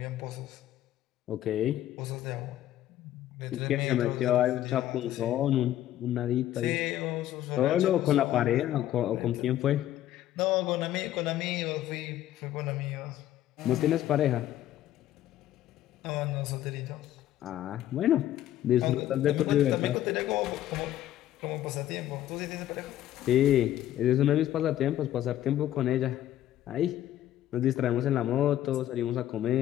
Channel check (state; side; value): quieter; right; 12.7 dB